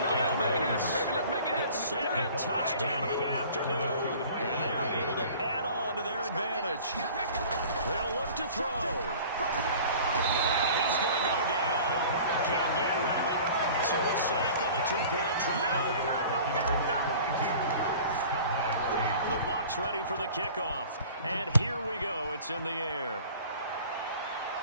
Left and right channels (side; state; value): both; inverted; correlation -0.45